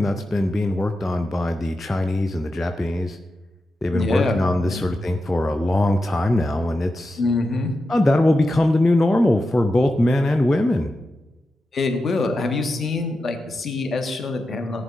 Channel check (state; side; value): normal; both; correlation 0.90